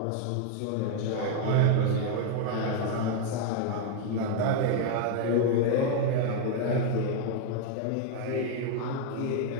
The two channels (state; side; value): different; both; correlation 0.00